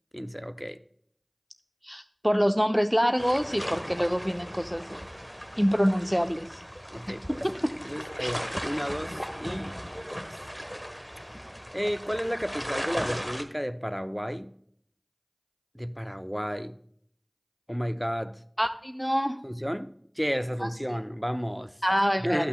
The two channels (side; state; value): both; identical; correlation 1.00